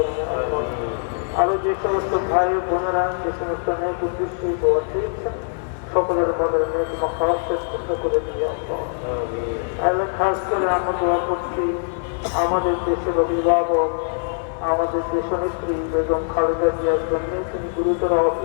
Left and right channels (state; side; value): silent; right; 63 dB below the other